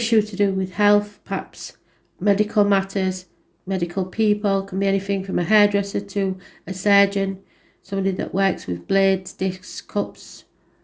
to do with health, perhaps medical matters, medical people. Can be anything from a hairdresser to a surgeon, somebody that works with blades, discs, cups,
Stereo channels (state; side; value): identical; both; correlation 1.00